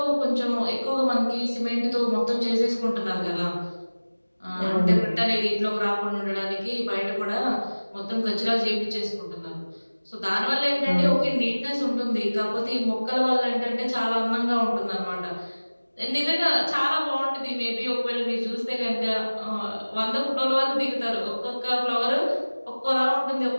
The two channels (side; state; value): both; inverted; correlation -1.00